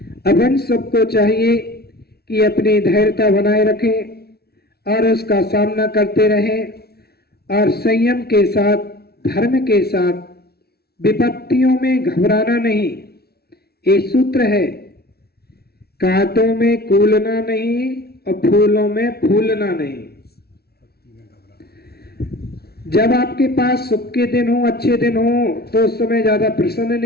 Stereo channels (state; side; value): late; right; 0.46 ms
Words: अब हम सबको चाहिए कि अपनी धैर्यता बनाए रखें और उसका सामना करते रहें और संयम के साथ, धर्म के साथ, विपत्तियों में घबराना नहीं। ये सूत्र है, कांटों में कूलना नहीं और फूलों में फूलना नहीं। जब आपके पास सुख के दिन हो, अच्छे दिन हो, तो उस समय ज्यादा प्रसन्न